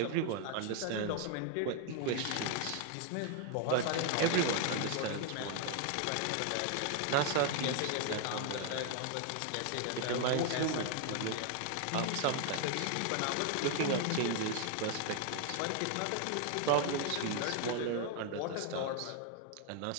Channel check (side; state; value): both; different; correlation 0.01